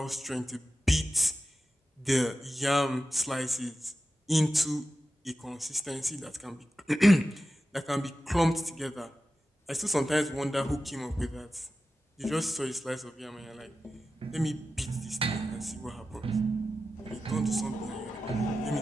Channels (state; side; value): normal; both; correlation 0.93